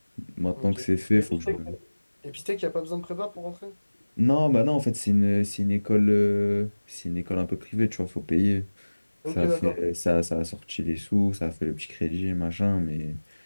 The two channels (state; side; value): inverted; both; correlation -1.00